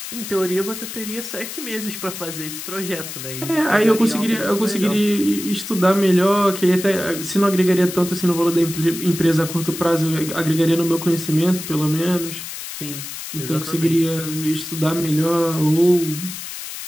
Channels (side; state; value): left; noise; hiss, 9 dB below the sound